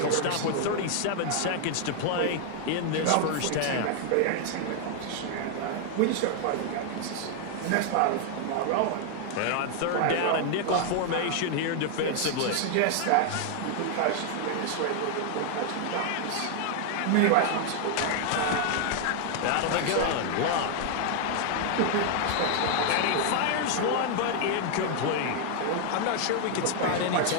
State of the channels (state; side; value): different; both; correlation 0.00